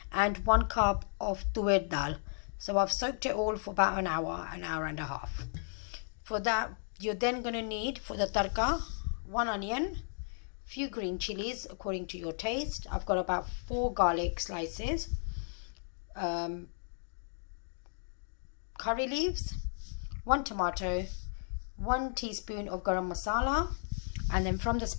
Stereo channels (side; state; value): right; silent; digital silence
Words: and 1 cup of tuer dal. So I've soaked it all for about an hour and a half. For that, you're then going to need for the tarka 1 onion, few green chilies according to your taste. I've got about 4 garlic slices. Curry leaves, 1 tomato, 1 teaspoon of garam masala, and then from the